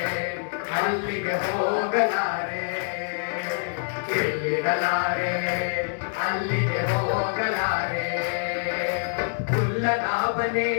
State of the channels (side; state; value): right; silent; digital silence